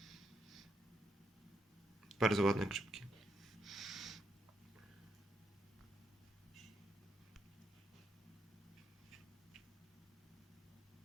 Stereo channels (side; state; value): both; normal; correlation 0.79